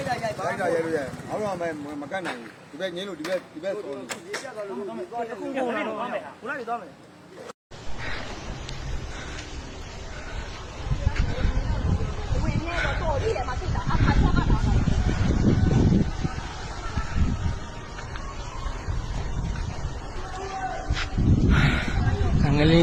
ိုက်တာရဲလို့ရဲအောက်တော့မကတ်နိုင်ဘူးဒီဘက်ငင်းလို့ဒီဘက်ဆော်လို့အခုကုန်လာတော့မယ်ခုနကသွားမယ်ဝင်နေတော့တော်ကြီးတယ်မှာသိတာအခါချတာငလင်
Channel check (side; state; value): both; identical; correlation 1.00